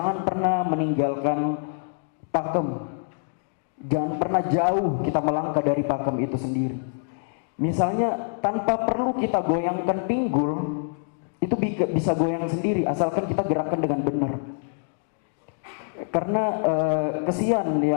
pernah meninggalkan pakem. Jangan pernah jauh kita melangkah dari pakem itu sendiri. Misalnya tanpa perlu kita goyangkan pinggul, itu bisa goyang sendiri asalkan kita gerakkan dengan benar. Karena kesian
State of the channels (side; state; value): right; silent; digital silence